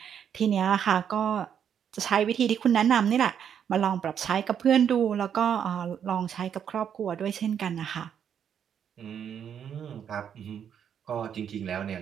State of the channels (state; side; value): quieter; left; 8.4 dB